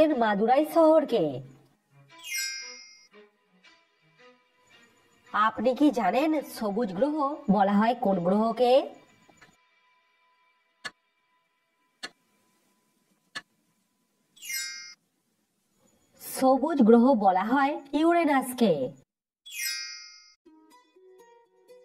মাদুরাই শহরকে। আপনি কি জানেন সবুজ গ্রহ বলা হয় কোন গ্রহকে? সবুজ গ্রহ বলা হয় ইউরেনাসকে।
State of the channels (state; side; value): identical; both; correlation 1.00